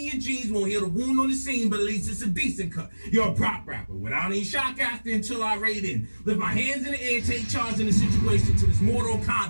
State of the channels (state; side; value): inverted; both; correlation -1.00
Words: your jeans. Won't heal the wound on the scene, but at least it's a decent cut. You're a prop rapper without any shock after until I raid in. Lift my hands in the air, take charge in the situation to this Mortal